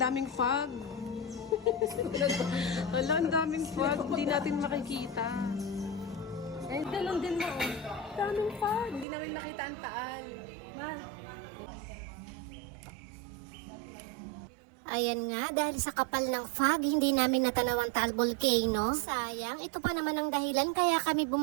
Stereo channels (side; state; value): left; drops out; at 9.1 s